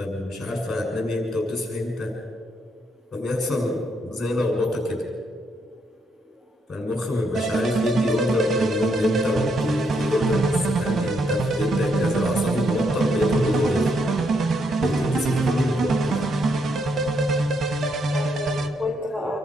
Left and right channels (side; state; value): both; normal; correlation 0.76